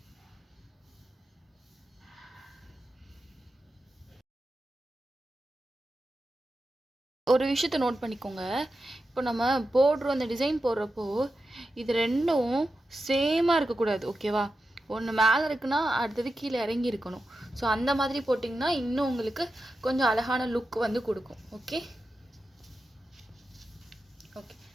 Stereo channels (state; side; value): normal; both; correlation 0.90